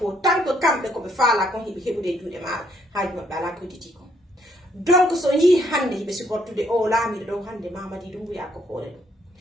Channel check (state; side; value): normal; both; correlation 0.70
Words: tant que kamɓe koɓe faala kon hiɓe heɓude e juuɗe maɗa haaji maɓɓe ala ko hedditi kon donc so yii hande hiɓe supportude o laamiɗo ɗo hande Mamadi Doumbouya ko hoore